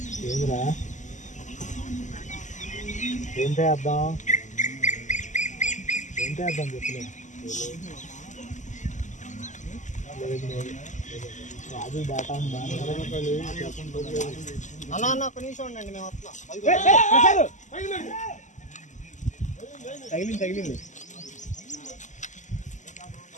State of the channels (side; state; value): right; late; 0.35 ms